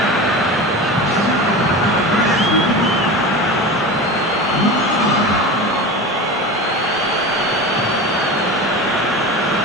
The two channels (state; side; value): normal; both; correlation 0.29